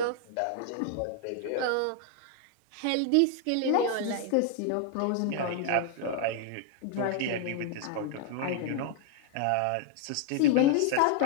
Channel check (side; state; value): both; different; correlation 0.00